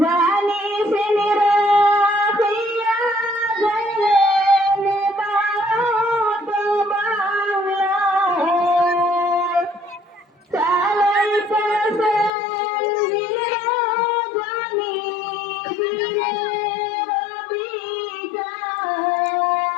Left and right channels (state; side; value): drops out; right; at 12.3 s